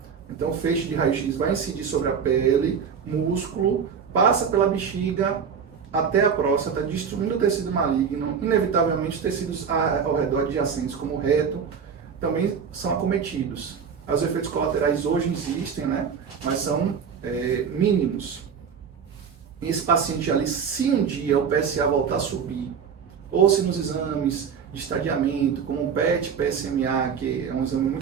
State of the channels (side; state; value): left; quieter; 6.7 dB